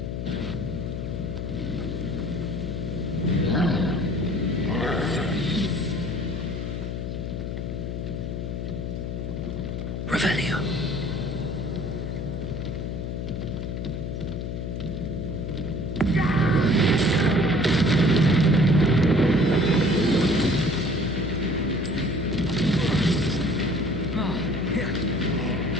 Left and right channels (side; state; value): left; noise; hum, 4 dB below the sound